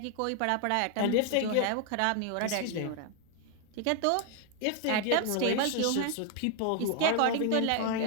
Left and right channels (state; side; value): different; both; correlation 0.00